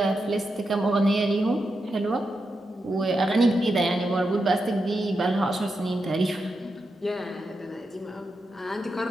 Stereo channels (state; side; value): normal; both; correlation 0.87